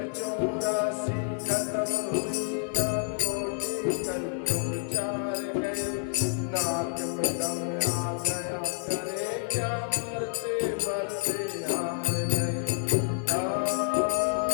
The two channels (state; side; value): silent; right; 59 dB below the other